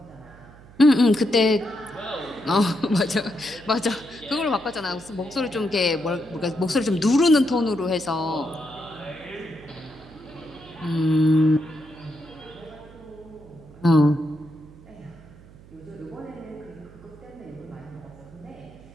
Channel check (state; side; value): noise; right; hum, 22 dB below the sound